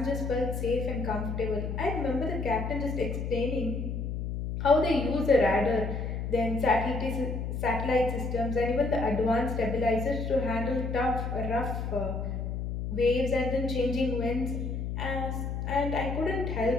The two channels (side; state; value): left; noise; hum, 3 dB below the sound